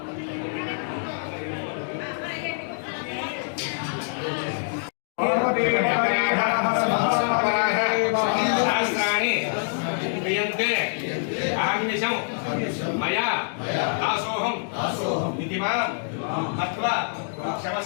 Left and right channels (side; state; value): right; silent; digital silence